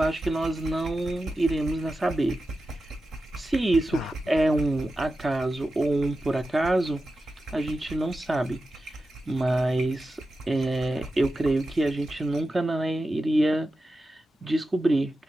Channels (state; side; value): normal; both; correlation 0.92